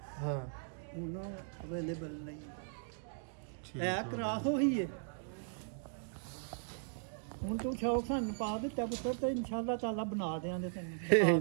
उन्होंने अवेलेबल नहीं है। क्रास हो ही है ਹੁਣ ਤੂੰ ਸ਼ੌਕ ਸਾਨੂੰ ਪਾ ਦਿੱਤਾ ਪੁੱਤਰ, ਤੇ ਇਨਸ਼ਾਅੱਲਾ ਤਾਲਾ ਬਣਾ ਦੇਾਂਗੇ ਤੈਨੂੰ।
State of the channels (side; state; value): left; silent; digital silence